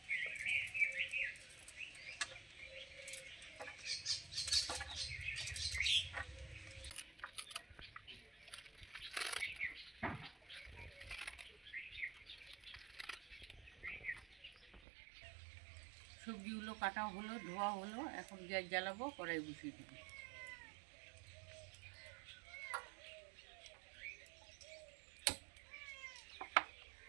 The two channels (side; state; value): left; drops out; at 14.8 s